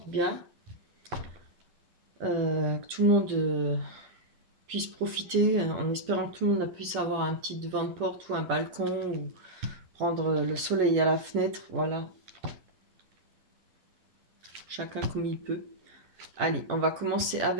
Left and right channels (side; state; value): left; late; 11 ms